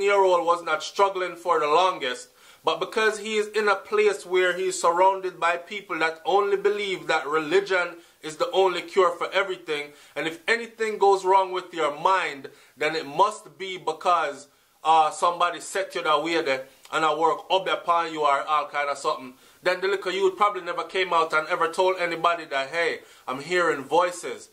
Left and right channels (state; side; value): identical; both; correlation 1.00